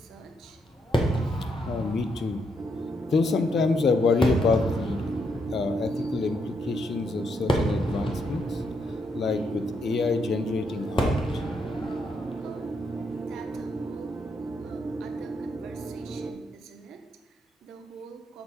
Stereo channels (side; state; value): both; normal; correlation 0.78